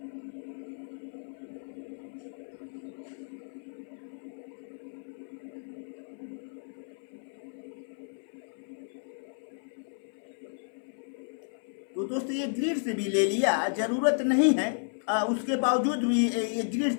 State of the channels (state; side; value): silent; right; 56 dB below the other